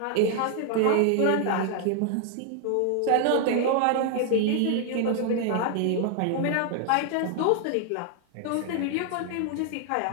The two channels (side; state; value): both; different; correlation 0.00